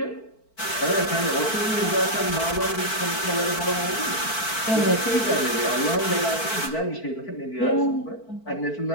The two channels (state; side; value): late; right; 4.5 ms